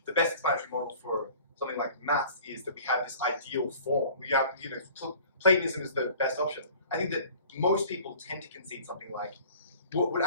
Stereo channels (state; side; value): inverted; both; correlation -0.46